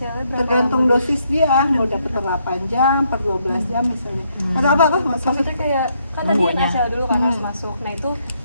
berapa? Tergantung dosis dia, mau dapat per 8 jam, per 12 jam misalnya. Atau apa? Maksudnya kayak kan tadi NaCl dulu kan harus masuk. Nah itu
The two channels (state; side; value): inverted; both; correlation -0.74